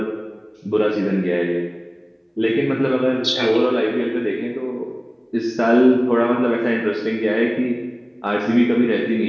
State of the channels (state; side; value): identical; both; correlation 1.00